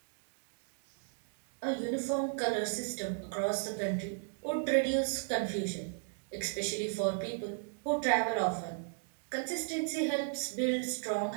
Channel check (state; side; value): silent; left; digital silence